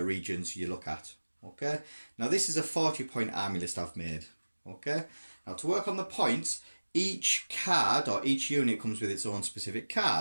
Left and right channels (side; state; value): both; inverted; correlation -1.00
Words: you look at, okay? Now this is a 40-point army list I've made, okay? Now to work on the points, each card or each unit comes with its own specific